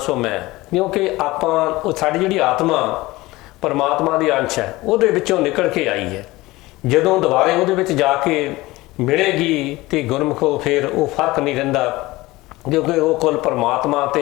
ਮੈਂ, ਕਿਉਂਕਿ ਆਪਾਂ ਉਹ ਸਾਡੀ ਜਿਹੜੀ ਆਤਮਾ ਪਰਮਾਤਮਾ ਦੀ ਅੰਸ਼ ਹੈ, ਉਹਦੇ ਵਿੱਚੋਂ ਨਿਕਲ ਕੇ ਆਈ ਹੈ। ਜਦੋਂ ਦੁਬਾਰੇ ਉਹਦੇ ਵਿੱਚ ਜਾ ਕੇ ਮਿਲੇਗੀ ਤੇ ਗੁਰਮੁਖੋ ਫਿਰ ਉਹ ਫਰਕ ਨਹੀਂ ਰਹਿੰਦਾ, ਕਿਉਂਕਿ ਉਹ ਕੁੱਲ ਪਰਮਾਤਮਾ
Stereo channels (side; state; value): right; quieter; 19.8 dB